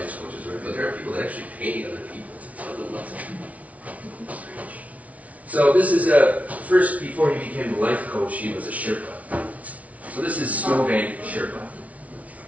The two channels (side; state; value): left; late; 0.068 ms